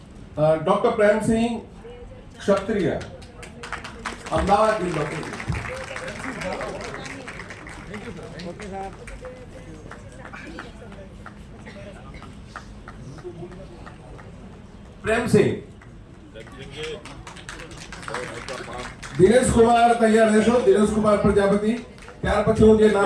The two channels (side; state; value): both; identical; correlation 1.00